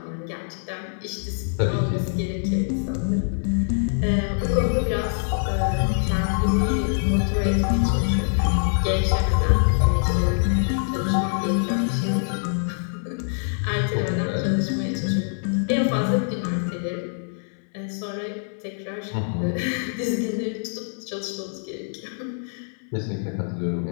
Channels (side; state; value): right; silent; digital silence